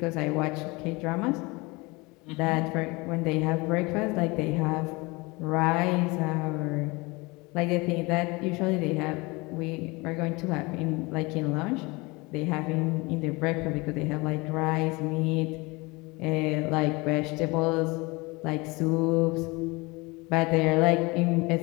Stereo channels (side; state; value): right; quieter; 24.9 dB